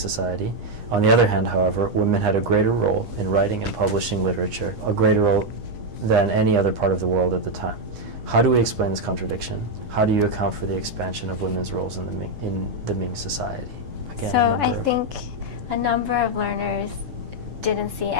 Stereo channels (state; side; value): late; left; 8.3 ms